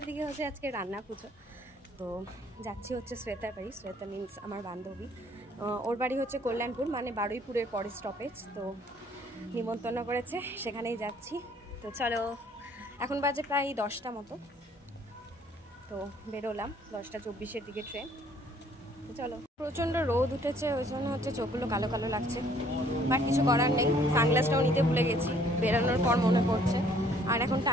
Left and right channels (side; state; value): both; normal; correlation 0.60